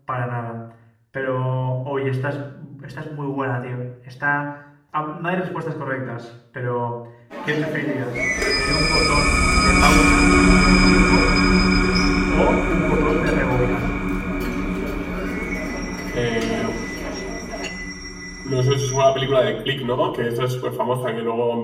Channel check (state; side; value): identical; both; correlation 1.00